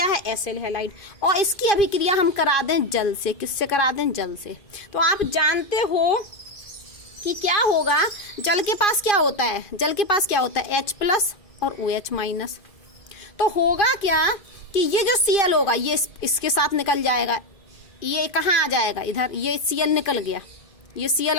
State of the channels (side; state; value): right; late; 2.5 ms